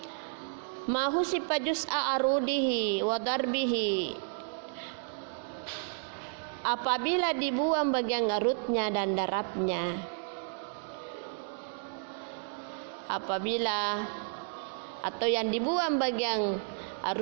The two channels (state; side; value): silent; left; digital silence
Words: ma husifa juz'a arudihi wa darbihi, apabila dibuang bagian arutnya dan darabnya. Atau yang dibuang bagian